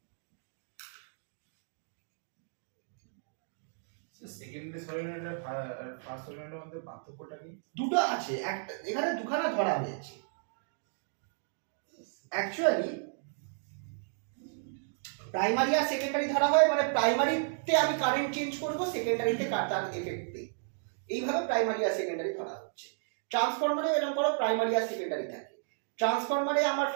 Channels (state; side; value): silent; left; digital silence